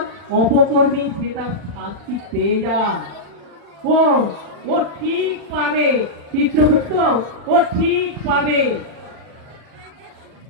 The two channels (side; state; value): left; late; 40 ms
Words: অপকর্মী সে তার শাস্তি পেয়ে যায়। ও ও ঠিক পাবে চিত্রগুপ্ত, ও ঠিক পাবে।